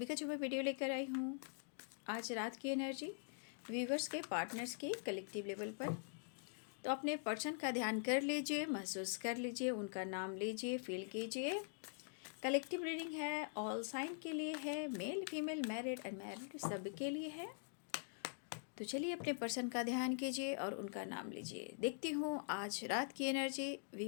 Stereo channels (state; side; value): silent; right; digital silence